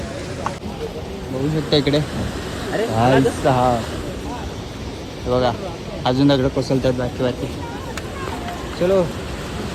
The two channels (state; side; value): identical; both; correlation 1.00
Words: बघू शकता इकडे. भाई साहब हे बघा अजून दगड कोसळतात बाकी बाकी. चलो